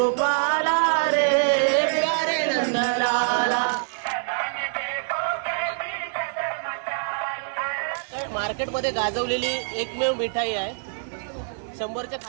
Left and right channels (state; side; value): silent; left; digital silence